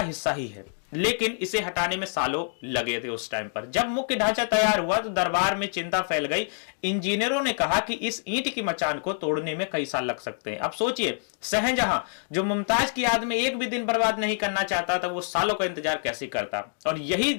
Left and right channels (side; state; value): right; silent; 61 dB below the other